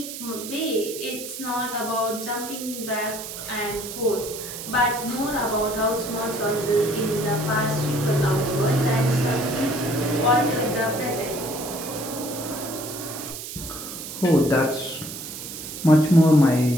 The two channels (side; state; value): right; noise; hiss, 9 dB below the sound